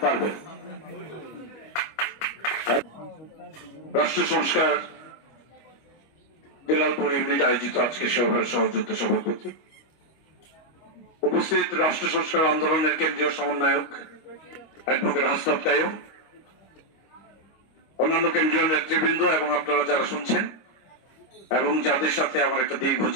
পারভেজ। রাষ্ট্র সংস্কার বেলালপুর ইউনিট আয়োজিত আজকে সভার সহযোদ্ধা সভাপতি, উপস্থিত রাষ্ট্র সংস্কার আন্দোলনের কেন্দ্রীয় সমন্বয়ক অ্যাডভোকেট হাসনাত কাইয়ুম, অন্যান্য কেন্দ্রীয় নেতৃবৃন্দ এবং আপনারা যারা শুনছেন এবং যাদের সাথে আমার একটা দীর্ঘ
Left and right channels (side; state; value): right; late; 25 ms